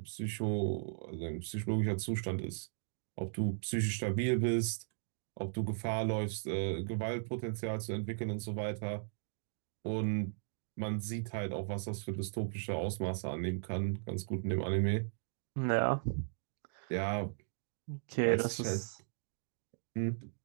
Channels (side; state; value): left; silent; digital silence